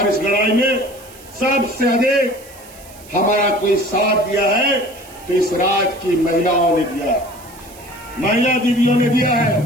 इस लड़ाई में सबसे अधिक हमारा कोई साथ दिया है तो इस राज्य की महिलाओं ने दिया है, महिला दीदियों ने दिया है।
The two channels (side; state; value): right; noise; hiss, 21 dB below the sound